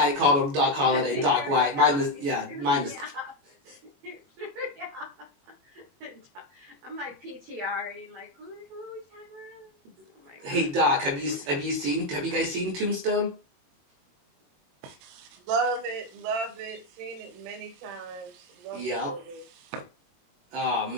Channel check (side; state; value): left; late; 21 ms